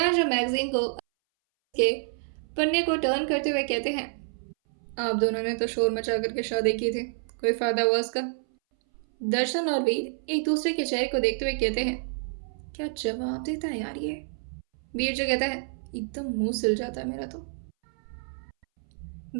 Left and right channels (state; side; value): silent; left; 59 dB below the other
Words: मैगजीन को के पन्ने को टर्न करते हुए कहते हैं, आप दोनों ने तो शोर मचा करके शादी की थी, कोई फायदा हुआ उसका? दर्शन और वीर एक दूसरे के चेहरे को देखते हुए कहते हैं, क्या जवाब देता है यार ये? वीर जो कहता है, एकदम मुंह सिल जाता है मेरा तो।